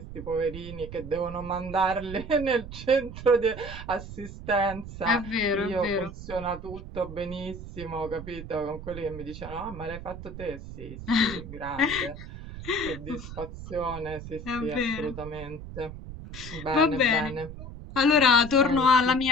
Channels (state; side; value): noise; right; rumble, 11 dB below the sound